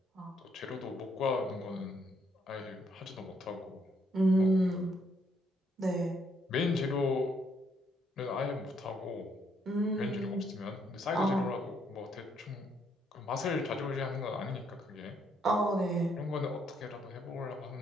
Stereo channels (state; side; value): normal; both; correlation 0.71